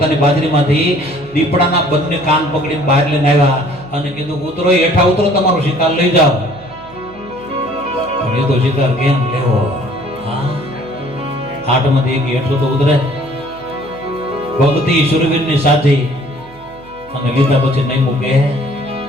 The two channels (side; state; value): right; noise; hum, 24 dB below the sound